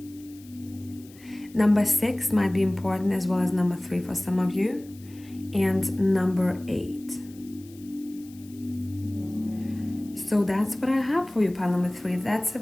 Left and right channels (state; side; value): noise; left; hiss, 24 dB below the sound